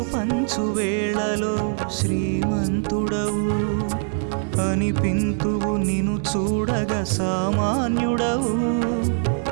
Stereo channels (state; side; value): silent; left; 59 dB below the other